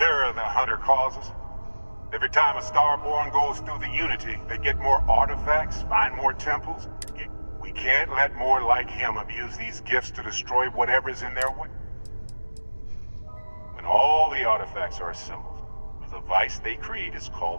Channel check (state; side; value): inverted; both; correlation -1.00